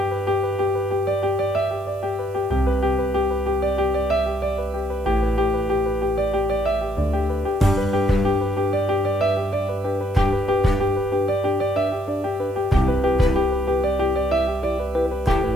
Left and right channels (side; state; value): right; noise; hiss, 30 dB below the sound